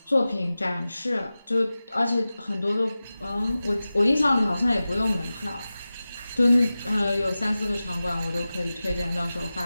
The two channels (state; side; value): inverted; both; correlation -0.96